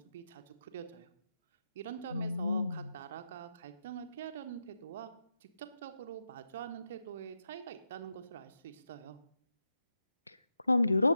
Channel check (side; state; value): both; inverted; correlation -0.88